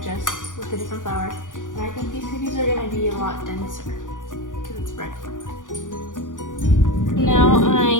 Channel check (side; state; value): right; late; 0.88 ms